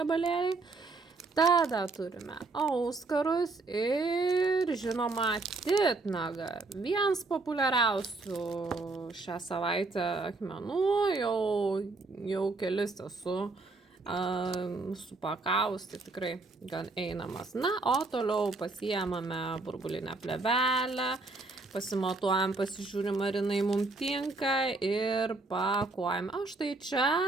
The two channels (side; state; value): left; quieter; 3.4 dB